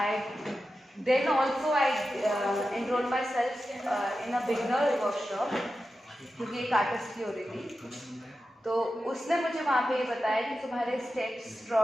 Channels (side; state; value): both; normal; correlation 0.92